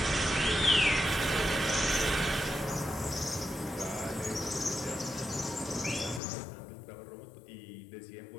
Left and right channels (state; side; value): drops out; right; at 6.2 s